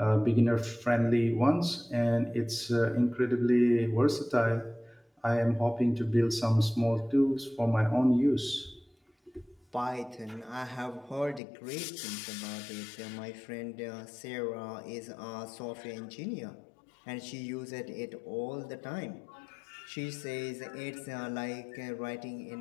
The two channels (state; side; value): drops out; right; at 11.4 s